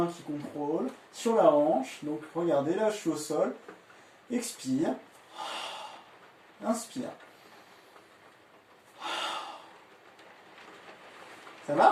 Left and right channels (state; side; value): identical; both; correlation 1.00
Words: qui contrôle, sur la hanche, donc regardez, là je suis au sol, expire, inspire. Ça